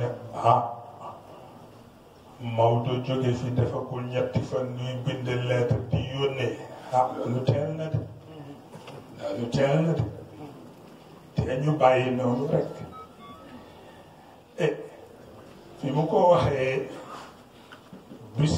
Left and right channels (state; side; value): identical; both; correlation 1.00